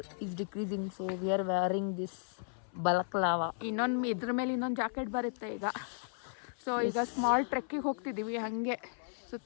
is decreasing. So we are wearing this balaclava. ಇದ್ರ ಮೇಲೆ ಇನ್ನೊಂದು ಜಾಕೆಟ್ ಬರುತ್ತೆ ಈಗ. ಸೊ ಈಗ ಸ್ಮಾಲ್ ಟ್ರೆಕ್ಕಿಗೆ ಹೋಗ್ತಿದ್ದೀವಿ. ಹಾಗೆ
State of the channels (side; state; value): right; silent; 55 dB below the other